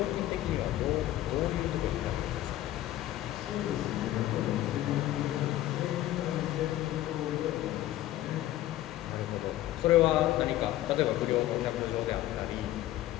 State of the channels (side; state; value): right; quieter; 14.3 dB